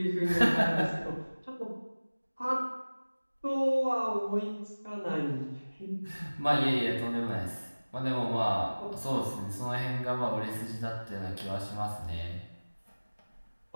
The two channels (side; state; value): both; inverted; correlation -1.00